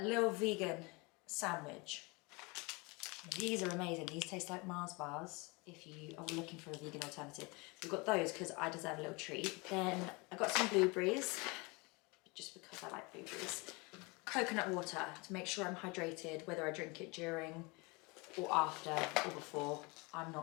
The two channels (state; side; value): quieter; right; 27.4 dB